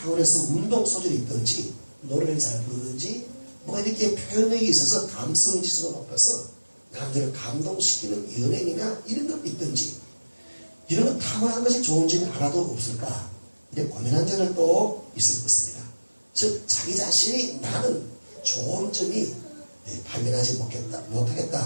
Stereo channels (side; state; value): both; inverted; correlation -1.00